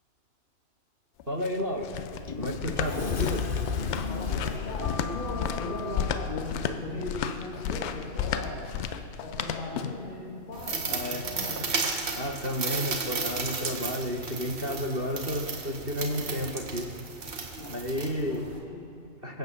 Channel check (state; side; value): late; left; 3.1 ms